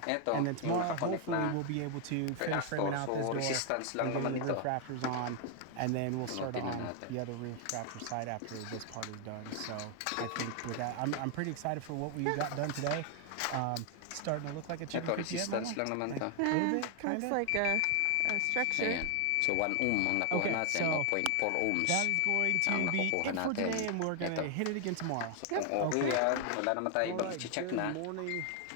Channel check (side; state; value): both; different; correlation 0.00